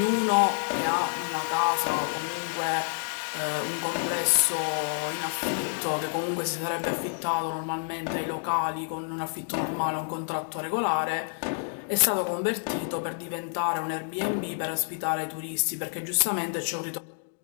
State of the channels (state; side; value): silent; right; digital silence